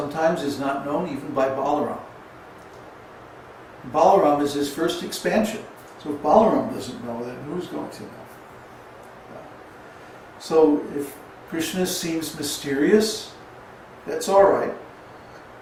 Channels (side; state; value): both; identical; correlation 1.00